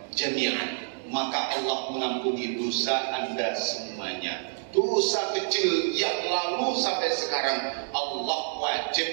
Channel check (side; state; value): left; silent; digital silence